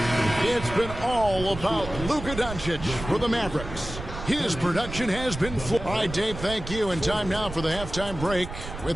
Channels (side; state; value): right; noise; rumble, 10 dB below the sound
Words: It's been all about Luka Doncic for the Mavericks. His production has been full. All right, Dave, thank you. And time now for the halftime break